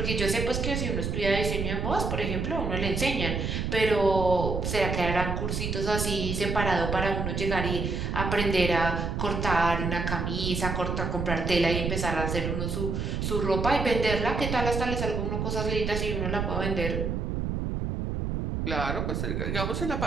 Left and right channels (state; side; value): noise; right; rumble, 2 dB below the sound